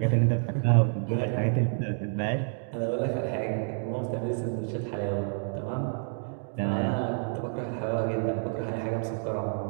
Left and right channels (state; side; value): silent; left; 59 dB below the other